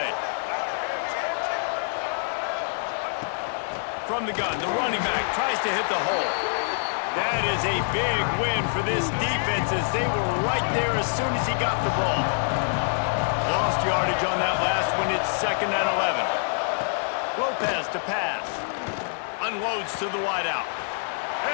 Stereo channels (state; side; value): silent; right; 61 dB below the other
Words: From the gun, the running back tries to hit the hole. That is a big win for this defense as they were right there as soon as he got the ball. Lost yardage on that last one. It's 2nd and 11. Lopez to pass. Unloads to the wideout.